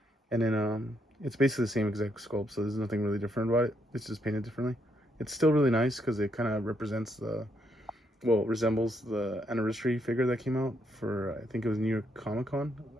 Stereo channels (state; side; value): normal; both; correlation 0.76